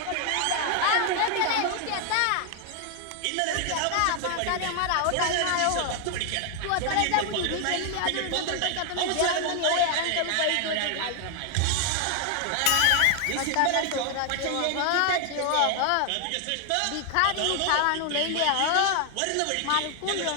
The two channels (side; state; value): both; different; correlation 0.00